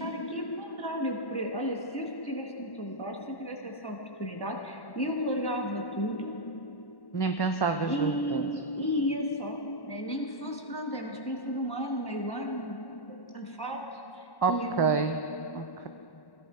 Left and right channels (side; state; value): right; late; 1.1 ms